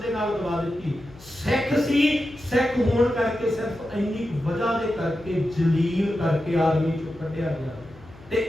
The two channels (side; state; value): left; noise; hum, 22 dB below the sound